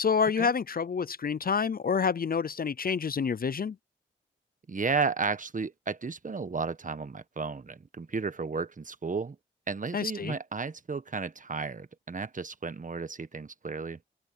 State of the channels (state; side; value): normal; both; correlation 0.15